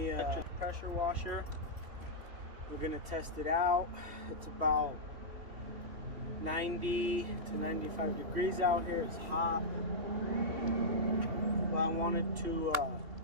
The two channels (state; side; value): late; left; 3.1 ms